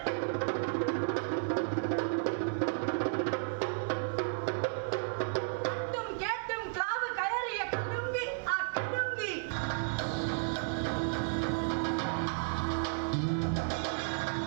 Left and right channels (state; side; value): silent; left; digital silence